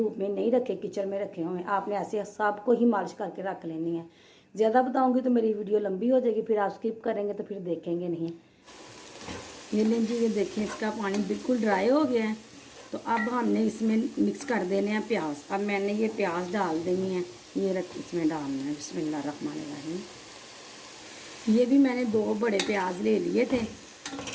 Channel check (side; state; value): both; identical; correlation 1.00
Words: में नहीं रखे, किचन में रखे हुए। आपने ऐसे सबको ही मालिश करके रख लेनी है। ज़्यादा बताऊँगी तो मेरी वीडियो लंबी हो जाएगी, फिर आप स्किप करेंगे तो फिर देखेंगे नहीं। ये लें जी, ये देखें इसका पानी बिल्कुल ड्राई हो गया है। तो अब हमने इसमें मिक्स कर देने हैं प्याज। अब मैंने ये प्याज डाल देनी है, ये रख इसमें डालना है। बिस्मिल्लाहिर्रहमानिर्रहीम। ये भी मैंने 2 बड़े प्याज ले लिए थे,